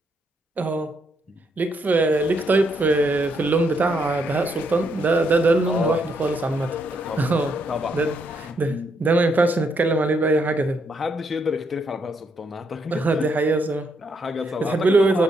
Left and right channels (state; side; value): normal; both; correlation 0.76